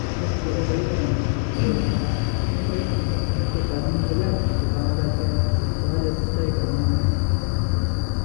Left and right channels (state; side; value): silent; right; digital silence